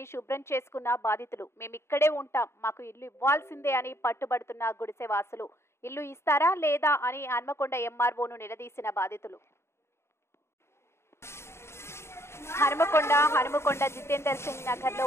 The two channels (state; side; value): late; right; 0.13 ms